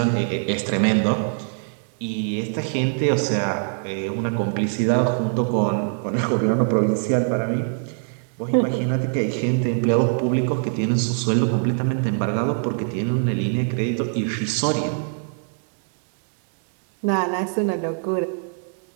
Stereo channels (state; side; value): silent; left; digital silence